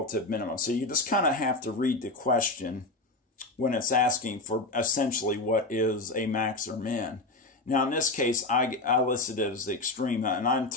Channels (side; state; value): right; quieter; 3.0 dB